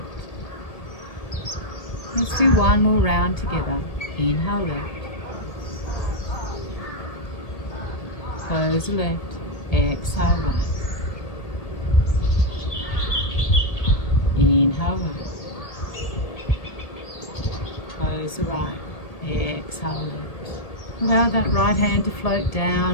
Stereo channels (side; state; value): right; late; 1.8 ms